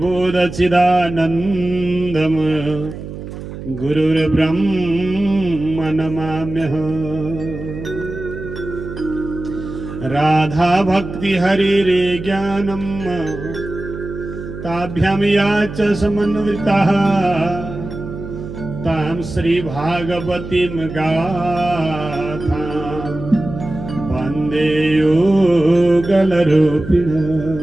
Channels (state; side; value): noise; right; hum, 10 dB below the sound